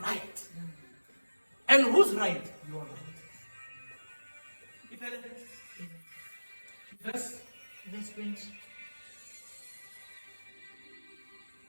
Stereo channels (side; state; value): both; inverted; correlation -1.00